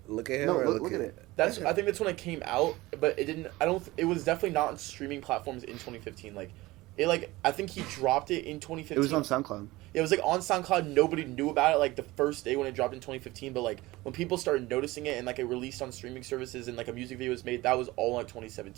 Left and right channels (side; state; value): left; quieter; 19.7 dB